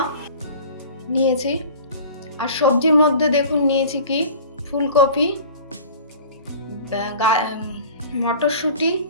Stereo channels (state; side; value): inverted; both; correlation -0.42